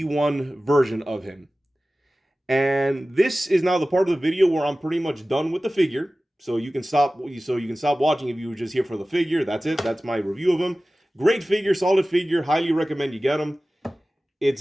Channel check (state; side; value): normal; both; correlation 0.96